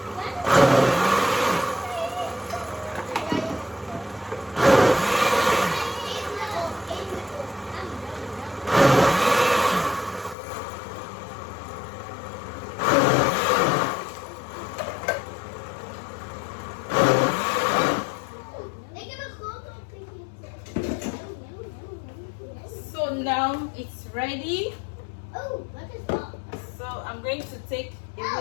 So now it's ready. Oh, what is that? So I'm going to take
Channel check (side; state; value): right; drops out; at 10.4 s